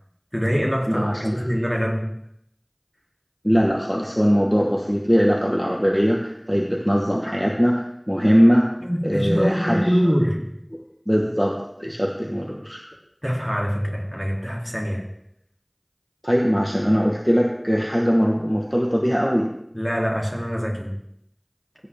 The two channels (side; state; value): both; identical; correlation 1.00